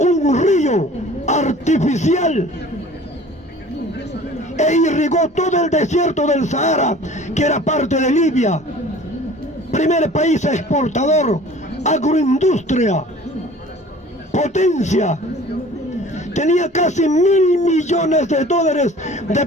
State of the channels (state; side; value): normal; both; correlation 0.47